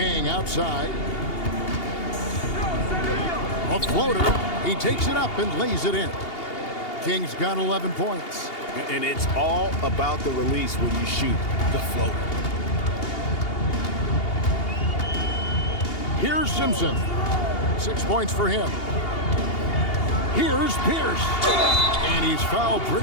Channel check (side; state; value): right; late; 2.8 ms